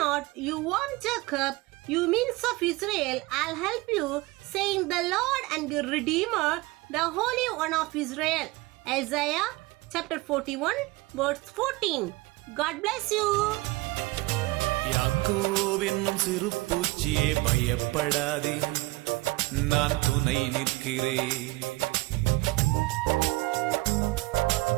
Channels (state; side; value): quieter; left; 21.7 dB